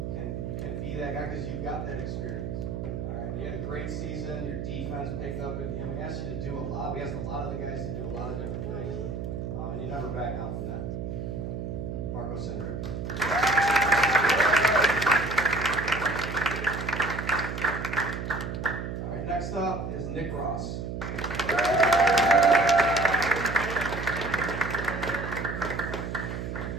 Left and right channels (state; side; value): noise; right; hum, 5 dB below the sound